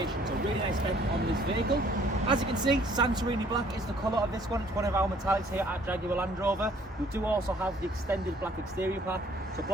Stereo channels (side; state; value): both; normal; correlation 0.59